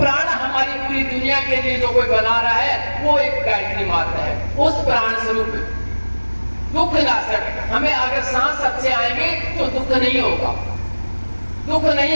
हमारी पूरी दुनिया के लिए जो कोई बना रहा है वो एक गायत्री माता है। उस प्राण स्वरूप दुख नाशक, हमें अगर सांस अच्छे आएंगे तो दुख नहीं होगा, दुख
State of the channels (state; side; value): inverted; both; correlation -1.00